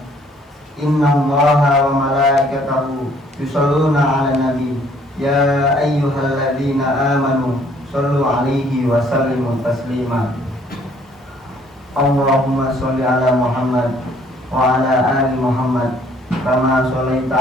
inna Allaha wa malaikatahu yusalluna 'alan nabi يا أيها الذين آمنوا صلوا عليه وسلموا تسليما اللهم صل على محمد وعلى آل محمد كما صليت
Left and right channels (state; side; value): normal; both; correlation 0.61